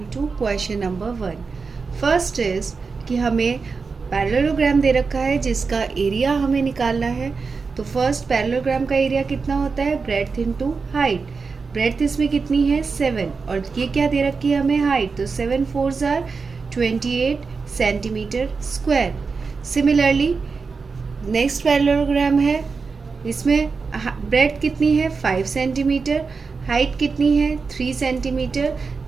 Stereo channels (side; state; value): left; quieter; 4.8 dB